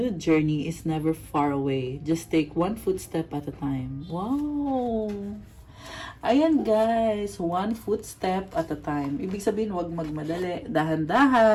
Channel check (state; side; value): identical; both; correlation 1.00